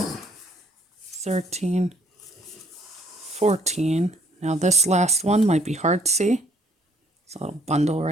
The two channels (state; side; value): normal; both; correlation 0.64